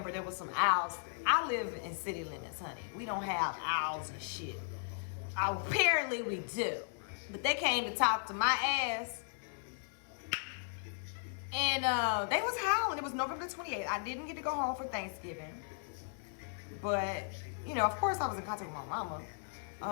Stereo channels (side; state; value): right; silent; digital silence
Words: there was some owls. I live in city limits, honey. We don't have owls and shit. Apparently we do. But they came to talk to my ass. And they was howling. It was November 28th. I didn't get to go home for Thanksgiving. But, you know, of course I was in contact with my mama.